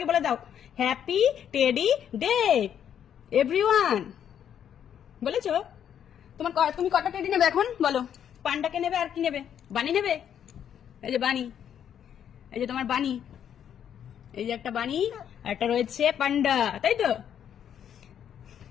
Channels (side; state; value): right; quieter; 9.2 dB